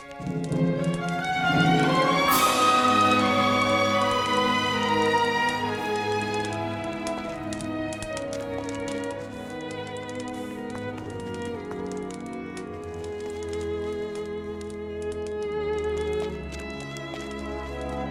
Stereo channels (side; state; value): both; identical; correlation 1.00